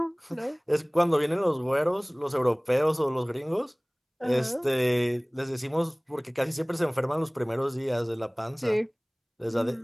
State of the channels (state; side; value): identical; both; correlation 1.00